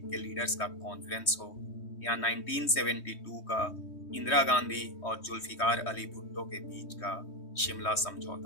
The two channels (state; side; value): late; right; 3.2 ms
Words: के लीडर्स का कॉन्फ्रेंस हो या 1972 का इंदिरा गांधी और जुल्फिकार अली भुट्टो के बीच का शिमला